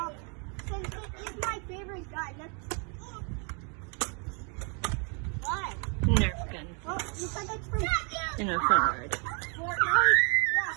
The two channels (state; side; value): quieter; left; 36.9 dB